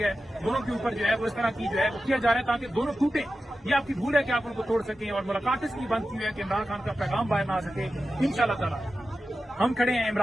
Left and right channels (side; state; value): both; normal; correlation 0.93